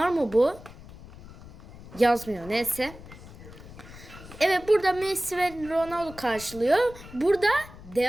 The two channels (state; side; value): noise; left; rumble, 17 dB below the sound